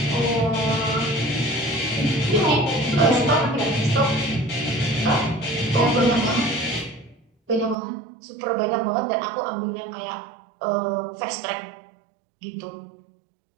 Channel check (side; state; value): left; drops out; at 7.8 s